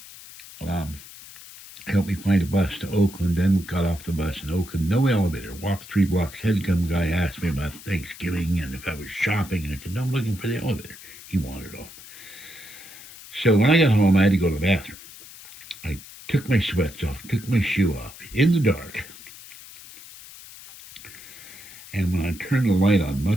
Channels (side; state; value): left; noise; hiss, 17 dB below the sound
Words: helped me find a bus to Oakland, then got off the bus in Oakland, no elevator, walked 3 blocks, had come guy asked me about Thanksgiving and if I was shopping, and I said, no, I'm looking for the elevator. He wandered off. So when I got home, I had to go to the bathroom. I took my sweats off, took my shoe off, in the dark, and when I turned the light on,